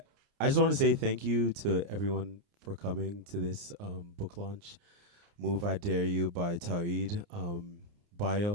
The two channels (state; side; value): late; left; 29 ms